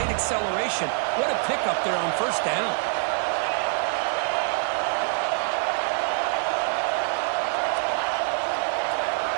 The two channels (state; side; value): silent; left; 62 dB below the other